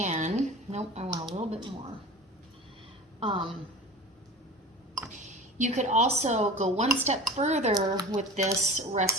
Nope, I want a little bit more. You could also go one step further with this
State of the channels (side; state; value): both; normal; correlation 0.36